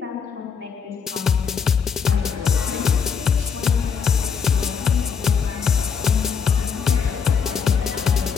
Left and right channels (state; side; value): quieter; right; 6.4 dB